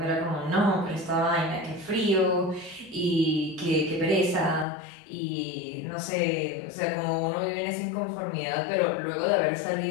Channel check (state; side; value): drops out; right; at 4.7 s